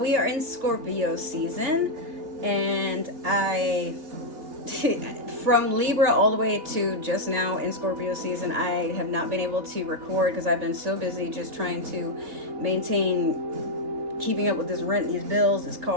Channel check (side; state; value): left; late; 3.1 ms